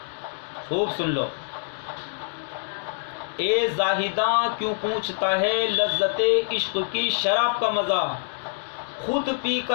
خوب سن لو، اے زاہداں کیوں پوچھتا ہے لذت عشق کی شراب کا مزہ، خود پی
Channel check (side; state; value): right; silent; 61 dB below the other